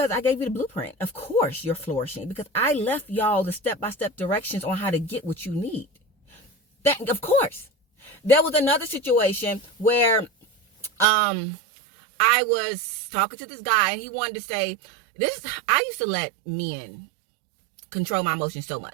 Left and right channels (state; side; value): drops out; left; at 11.1 s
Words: I gave you the blueprint. Of course you're flourishing because I left y'all the step-by-step directions on how to get what you need. That, of course. There was another situation where I was talking to this guy and he wanted to say, I used to let men control my emotions so